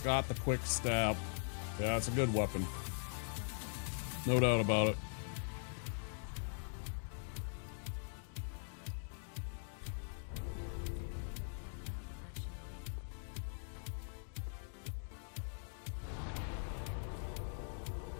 got the quick step. Yeah, it's a good weapon. No doubt about it.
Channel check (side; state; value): right; silent; digital silence